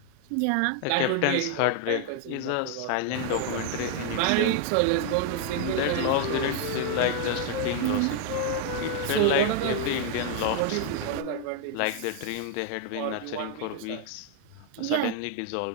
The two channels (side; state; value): both; different; correlation 0.00